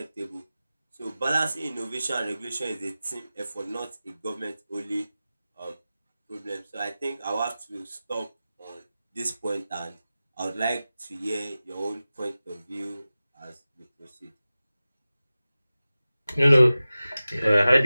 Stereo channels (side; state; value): both; inverted; correlation -0.96